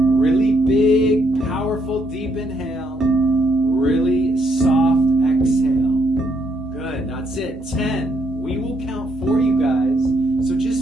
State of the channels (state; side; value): normal; both; correlation 0.74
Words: really big, powerful, deep inhale. Really soft exhale. Good, that's it. 10. We will count for you guys. So just